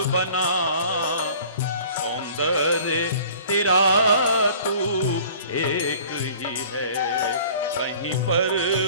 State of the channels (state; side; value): inverted; both; correlation -0.49